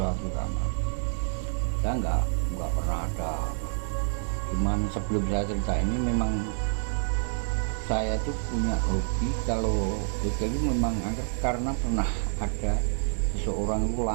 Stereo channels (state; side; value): silent; left; digital silence